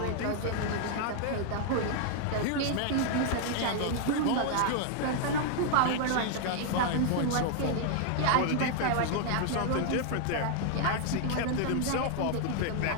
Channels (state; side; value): different; both; correlation 0.00